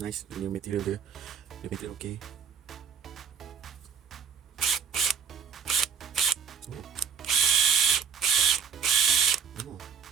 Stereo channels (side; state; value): left; quieter; 6.7 dB